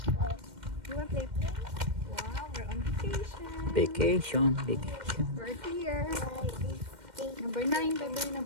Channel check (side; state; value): left; late; 2.1 ms